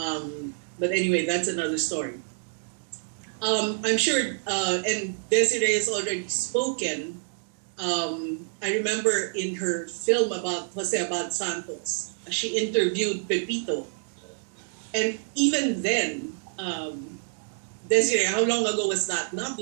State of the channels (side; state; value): left; silent; digital silence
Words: anyway, that's another story. I'm sure, and Desiree has already spoken. I remember in her film about Jose Abad Santos, she interviewed Pepito. And even then, Desiree, how long ago was that? Not